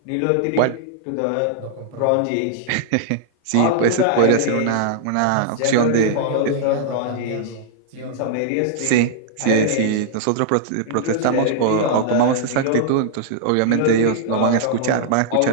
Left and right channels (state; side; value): different; both; correlation -0.01